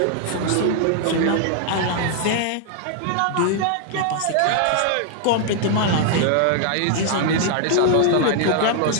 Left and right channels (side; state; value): both; different; correlation 0.00